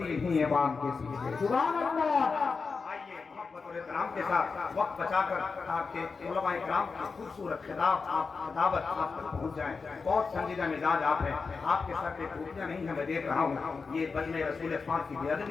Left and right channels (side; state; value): right; quieter; 4.7 dB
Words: انہی امام کے پیچھے۔ سبحان اللہ۔ آئیے محبت اور احترام کے ساتھ وقت بچا کر آپ کے علماء کرام کی خوبصورت خطابت آپ تک پہنچ جائیں۔ بہت سنجیدہ مزاج آپ ہیں، آپ کے سر پہ ٹوپیاں نہیں ہیں، میں دیکھ رہا ہوں، یہ بجنے رسول پاک کی بے